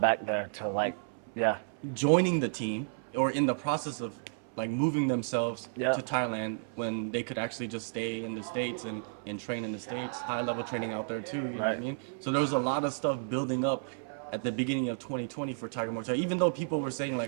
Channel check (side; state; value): left; silent; 56 dB below the other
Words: back there to like, yeah, joining the team or in the process of like moving themselves yeah, to Thailand when they could actually just stay in the States and train in the States, high level training out there too, you know what I right. mean? So there was a lot of stuff building up at the beginning of 2020 for Tiger Muay Thai, even though people were saying